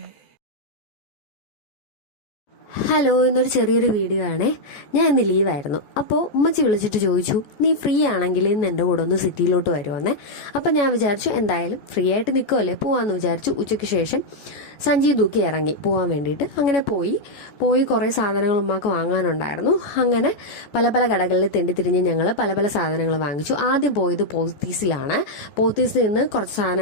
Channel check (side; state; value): right; late; 14 ms